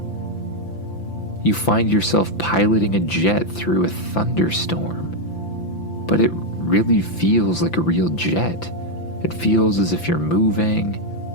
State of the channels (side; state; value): right; late; 5.9 ms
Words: You find yourself piloting a jet through a thunderstorm, but it really feels like a real jet. It feels as if you're moving.